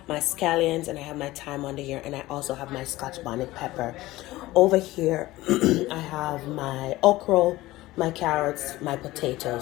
my scallions, and I have my thyme under here, and I also have my Scotch bonnet pepper. Over here, I have my okra, my carrots, my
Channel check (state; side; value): quieter; right; 17.8 dB